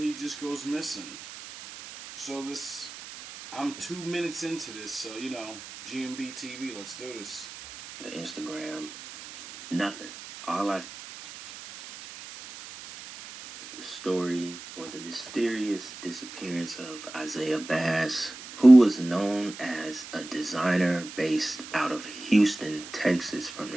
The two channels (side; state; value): right; noise; hiss, 14 dB below the sound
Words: just goes missing. So I'm 2 minutes into this, so GMB TV, let's do this. The Instagram, nothing. All I the story or the mysterious disappearance of Isaiah Bass, who was known as a designer based out of Houston, Texas, from